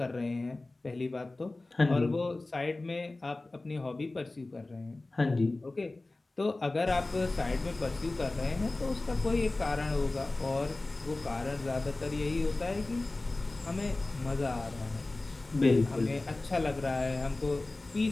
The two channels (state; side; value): quieter; right; 3.0 dB